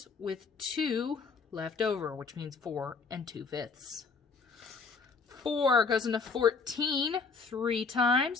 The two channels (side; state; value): right; quieter; 4.8 dB